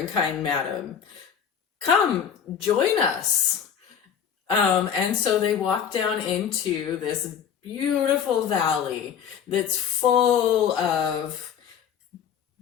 kind madam. Come, join us. And so they walk down into this beautiful valley that's full of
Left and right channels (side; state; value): right; quieter; 8.0 dB